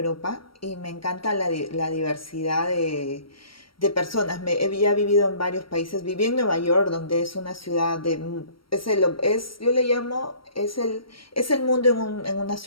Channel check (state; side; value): late; right; 0.74 ms